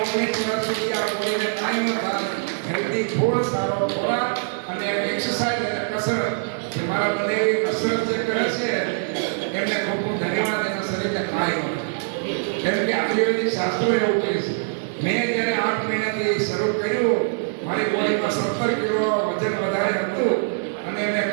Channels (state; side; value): silent; left; digital silence